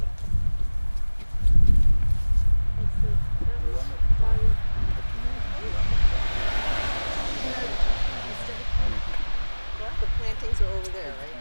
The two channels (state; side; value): inverted; both; correlation -1.00